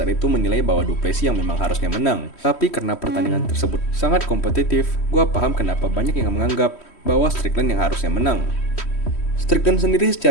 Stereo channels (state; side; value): late; right; 3.1 ms